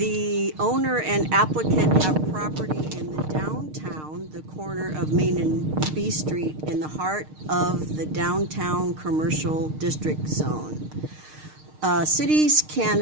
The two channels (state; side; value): late; left; 6.5 ms